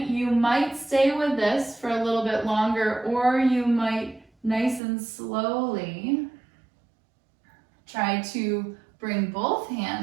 you might stay with this for a little bit longer, or you might nice and slowly try to bring both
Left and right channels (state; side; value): drops out; left; at 4.8 s